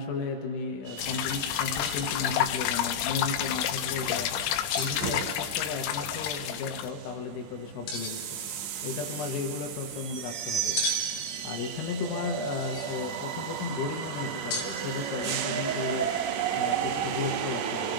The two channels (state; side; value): late; right; 20 ms